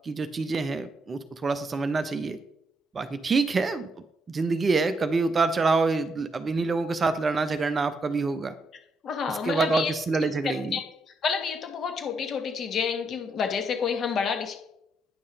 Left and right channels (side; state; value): both; normal; correlation 0.78